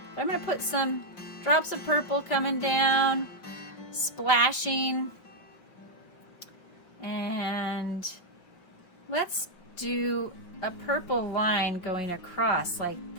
But I'm going to put some drops of purple coming down, splashing. And let's do a purple line going across like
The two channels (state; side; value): late; right; 5.7 ms